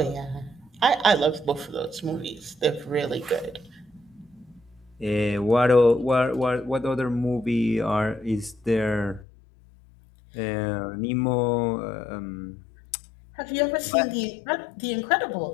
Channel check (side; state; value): right; drops out; at 9.2 s